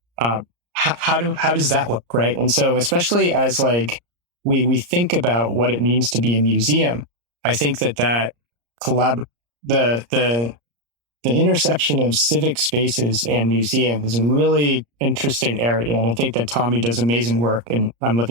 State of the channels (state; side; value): late; left; 34 ms